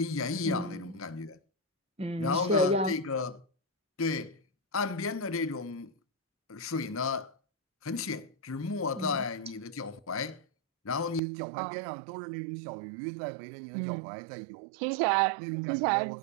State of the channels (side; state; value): left; drops out; at 11.2 s